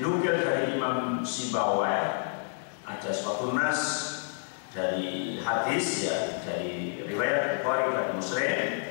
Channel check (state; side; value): silent; right; digital silence